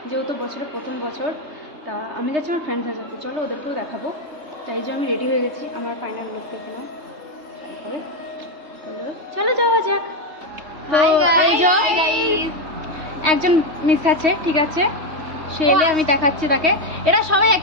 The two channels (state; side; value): late; left; 3.2 ms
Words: যেহেতু বছরের প্রথম বছর, তা আমি যাচ্ছি আমার ফ্রেন্ডসদের সাথে। চলো ওদেরকেও দেখাবো। তাই যে আমি রেডি হয়ে গেছি, আমার ফাইনাল লুক দেখে নিও শাড়ি পরে। চলো যাওয়া যাক। তো এই যে একজন মিস আছে, ঠিক আছে, সে এলে আমি দেখাচ্ছি তাকে। এরা সবাই